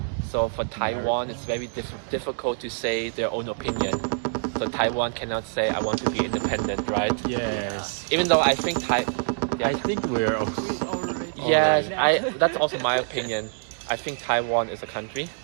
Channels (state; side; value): silent; left; digital silence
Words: So for Taiwan, it's very difficult to say their own opinion. So Taiwan cannot say, I want to be independent, right? Yes. Even though I think I think we're yes, that's also my opinion. I think Taiwan is a country,